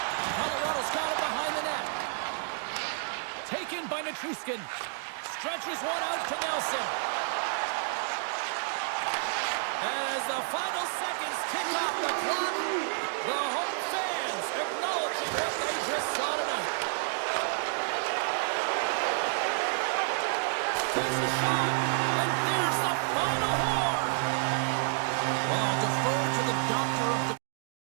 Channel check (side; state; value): left; silent; digital silence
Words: Colorado's got it behind the net. Taken by Nichushkin. Stretches one out to Nelson. As the final seconds tick off the clock, the home fans acknowledging what they just saw tonight. There's the shot, and there's the final horn. Well, defer to the doctor of the